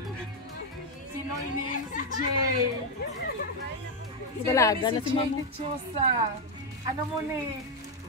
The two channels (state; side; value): normal; both; correlation 0.03